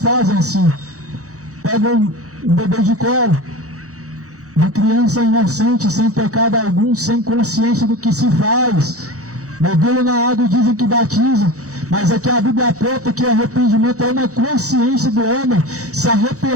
assim. Pegam um bebê de colo, uma criança inocente, sem pecado algum, sem consciência do que se faz. Mergulham na água e dizem que batizam. Mas aqui a Bíblia aponta que o arrependimento é uma consciência do homem se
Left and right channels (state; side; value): late; left; 0.65 ms